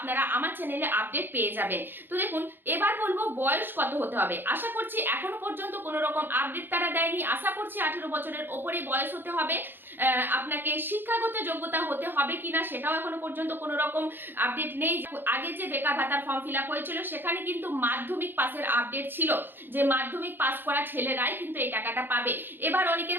আমার চ্যানেলে আপডেট পেয়ে যাবেন। তো দেখুন এবার বলবো বয়স কত হতে হবে। আশা করছি এখনো পর্যন্ত কোনো রকম আপডেট তারা দেয়নি, আশা করছি 18 বছরের ওপরে বয়স হতে হবে। আপনাকে শিক্ষাগত যোগ্যতা হতে হবে কিনা সেটাও এখনো পর্যন্ত কোনো রকম আপডেট নেই। আগে যে বেকার ভাতার ফর্ম ফিল আপ হয়েছিল সেখানে কিন্তু মাধ্যমিক পাসের আপডেট ছিল, যে মাধ্যমিক পাস করা ছেলেরাই কিন্তু এই টাকাটা পাবে। এবার অনেকের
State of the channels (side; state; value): left; late; 0.099 ms